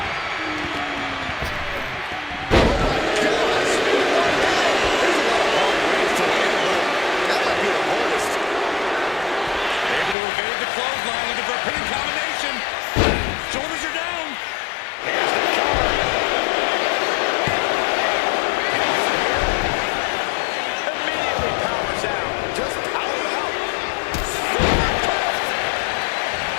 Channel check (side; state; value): right; drops out; at 10.2 s